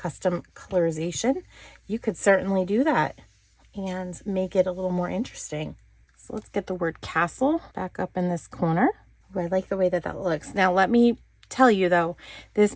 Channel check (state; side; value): identical; both; correlation 1.00